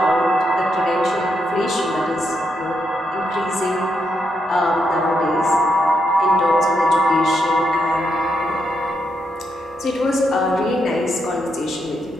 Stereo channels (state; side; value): normal; both; correlation 0.80